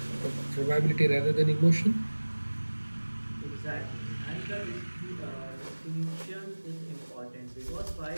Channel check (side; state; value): both; inverted; correlation -1.00